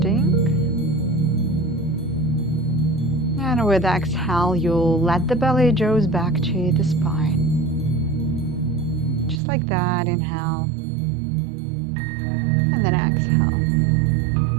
And with exhale, you'll let the belly draw back to the spine. Just like that, inhale. And then exhale.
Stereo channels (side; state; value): left; drops out; at 9.4 s